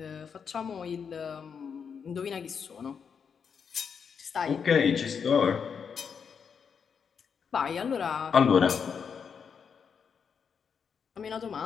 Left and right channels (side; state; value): right; quieter; 6.6 dB